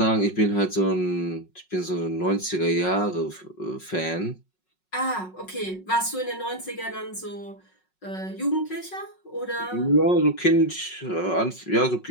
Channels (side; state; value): right; late; 5.4 ms